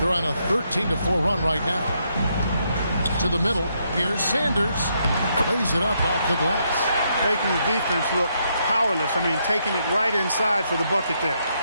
on a 13-4 run right now. To the middle. Here's Sanders. Lays it up off the glass. Making the defense look powerless. I mean, taking it right inside for the bucket there.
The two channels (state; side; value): inverted; both; correlation -0.77